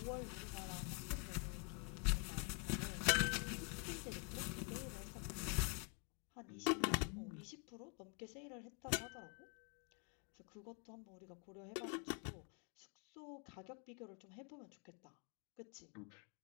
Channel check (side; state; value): right; quieter; 38.0 dB